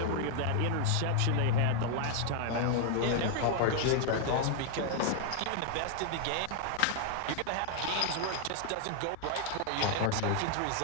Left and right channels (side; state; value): both; different; correlation 0.00